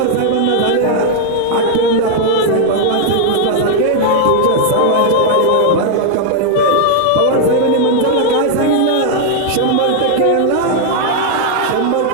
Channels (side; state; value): both; different; correlation 0.00